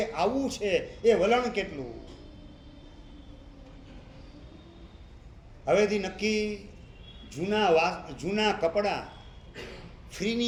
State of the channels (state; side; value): identical; both; correlation 1.00